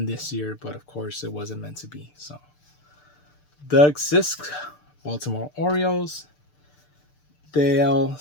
this year, but of course it wasn't meant to be. So, Doug Sisk, Baltimore Orioles. Dale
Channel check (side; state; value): right; late; 6.7 ms